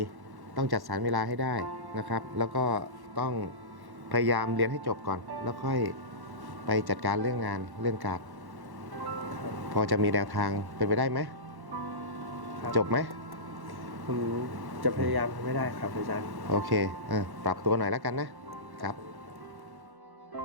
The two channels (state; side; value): late; left; 1.1 ms